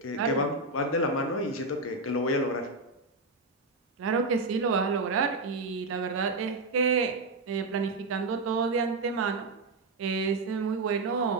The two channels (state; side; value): quieter; left; 3.2 dB